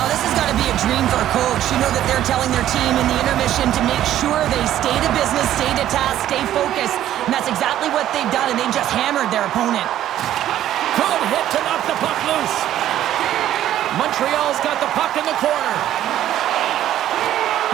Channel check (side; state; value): left; quieter; 12.2 dB